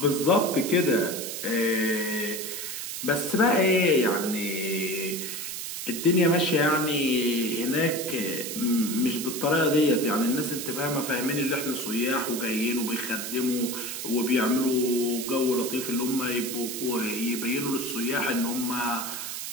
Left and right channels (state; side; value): noise; right; hiss, 6 dB below the sound